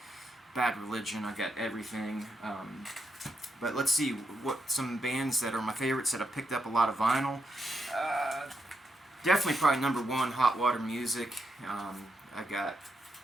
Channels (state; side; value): normal; both; correlation 0.83